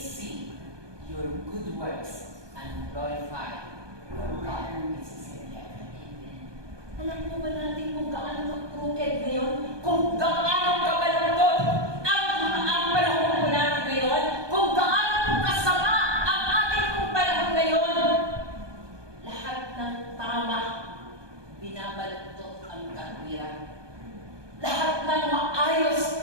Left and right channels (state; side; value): late; left; 1.2 ms